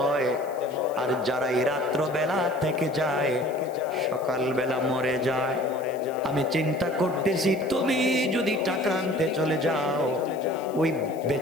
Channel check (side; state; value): left; noise; hiss, 24 dB below the sound